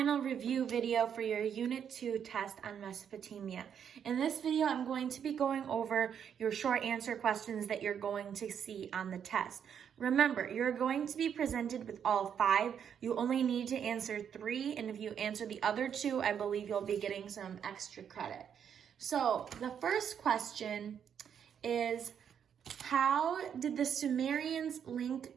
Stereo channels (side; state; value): left; quieter; 8.2 dB